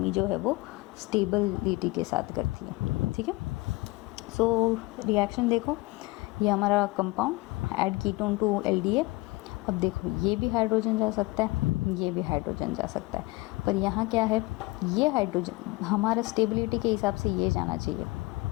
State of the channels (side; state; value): right; quieter; 22.7 dB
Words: जो है वो स्टेबिलिटी के साथ करती है। ठीक है, सो रिएक्शन देखो, ये हमारा compound add ketone to LDA, अब देखो ये भी हाइड्रोजन जा सकता है, ये भी हाइड्रोजन जा सकता है, पर यहाँ क्या है, ये हाइड्रोजन हमारा स्टेबिलिटी के हिसाब से ये जाना चाहिए,